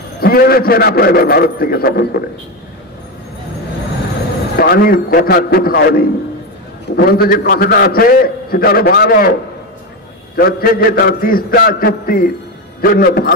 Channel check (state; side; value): normal; both; correlation 0.13